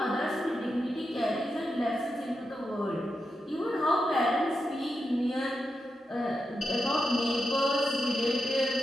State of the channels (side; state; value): both; normal; correlation 0.88